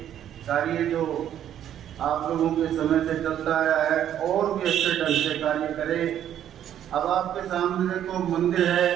कार्य जो आप लोगों के समय से चलता आया है और भी अच्छे ढंग से कार्य करे। अब आपके सामने देखो मंदिर है,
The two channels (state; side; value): quieter; left; 10.6 dB